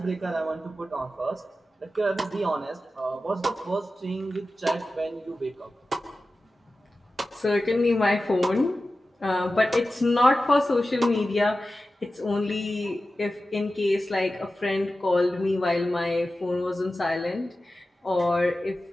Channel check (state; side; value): normal; both; correlation 0.94